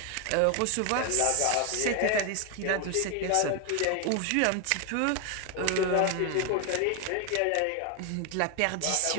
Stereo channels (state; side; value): different; both; correlation 0.01